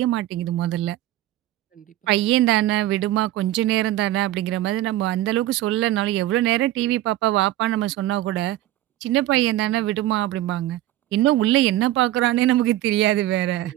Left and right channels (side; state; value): left; quieter; 14.6 dB